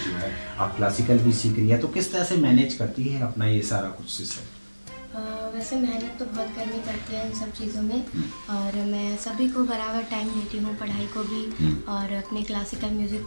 जो है आप क्लासिकल भी सीख रही है, तो किस तरह से मैनेज करती है अपना ये सारा कुछ सिस्टम? वैसे मेहनत तो बहुत करनी पड़ती है इन सब चीज़ों में और मैं सभी को बराबर टाइम देती हूँ, पढ़ाई को भी और अपने क्लासिकल म्यूज़िक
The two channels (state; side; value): inverted; both; correlation -1.00